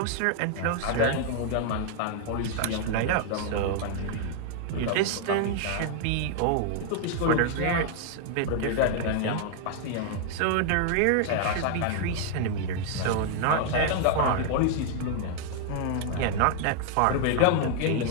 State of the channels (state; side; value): different; both; correlation 0.00